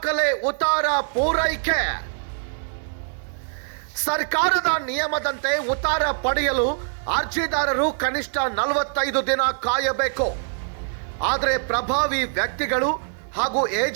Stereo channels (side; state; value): left; silent; digital silence